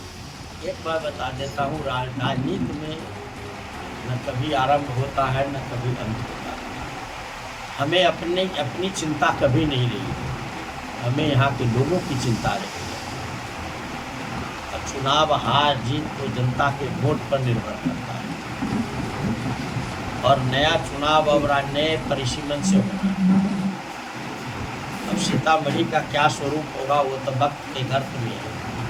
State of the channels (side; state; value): both; identical; correlation 1.00